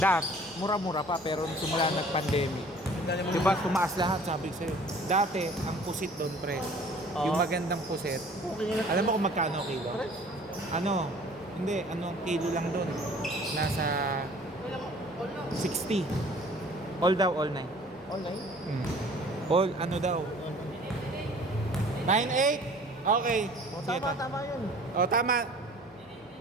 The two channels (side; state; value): both; normal; correlation 0.50